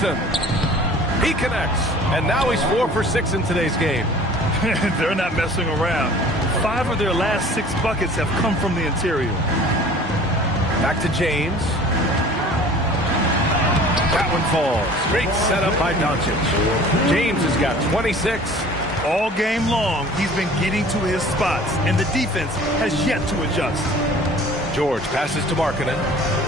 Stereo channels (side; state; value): both; normal; correlation 0.47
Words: He connects, and now he's 4 for 6 in today's game. They're not messing around. 5 of their last 6 buckets have come from the interior. Back to James. That one falls. Great setup by Doncic. James has got 26. All game long, he's been getting to his spots, and the defense has yet to adjust. George passes to Markkanen.